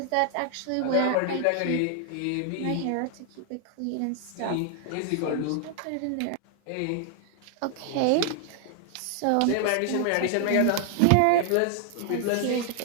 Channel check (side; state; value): both; different; correlation 0.00